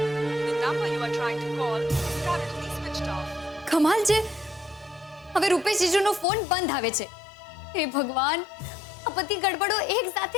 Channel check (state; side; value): drops out; right; at 6.2 s